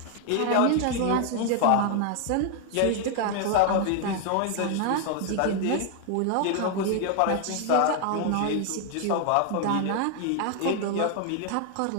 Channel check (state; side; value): different; both; correlation 0.00